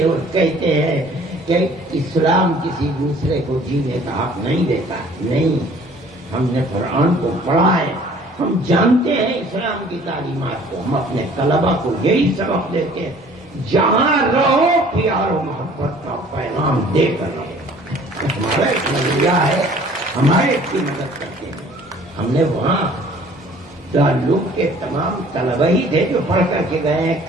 اور کہتے ہیں کہ اسلام کسی دوسرے کو جینے کا حق نہیں دیتا۔ نہیں، ہم نے قرآن کو پڑھا ہے، ہم جانتے ہیں اسلام کی تعلیمات کو، ہم اپنے طلبا کو یہی سبق دیتے ہیں، جہاں رہو پیار و محبت کا پیغام دے کر رہو۔ ہمارا ایک نظریہ ہے، ہمارے کی مدد کرتے ہیں۔ ہم نے وہاں دارالعلوم کے تمام طلبہ ہی تھے جو پڑھ کر کے گئے ہیں،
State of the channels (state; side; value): normal; both; correlation 0.53